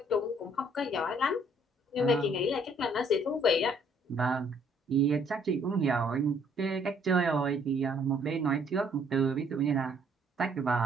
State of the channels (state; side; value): normal; both; correlation 0.64